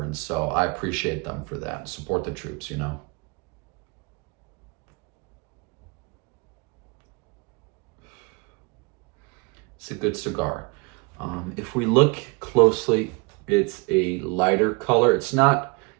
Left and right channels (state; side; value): quieter; left; 30.2 dB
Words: so I appreciate them for that. Support the troops, you know. It's a good cigar. If we look closely, it's a lighter color. It's not